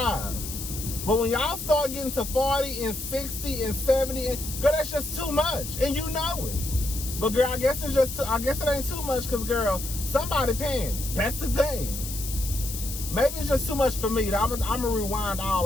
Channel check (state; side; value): noise; left; hiss, 8 dB below the sound